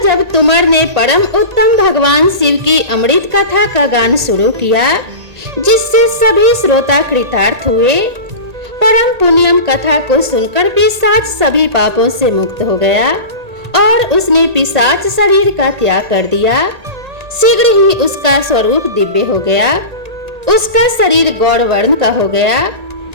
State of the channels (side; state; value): left; late; 1.8 ms